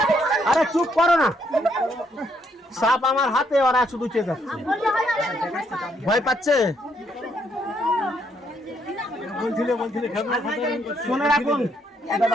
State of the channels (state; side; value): normal; both; correlation 0.73